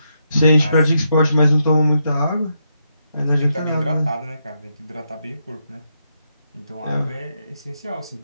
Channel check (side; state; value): both; inverted; correlation -0.81